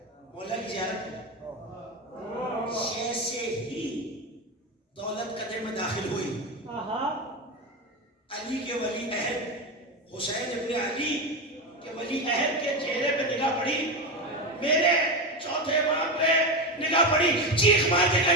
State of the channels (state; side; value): normal; both; correlation 0.16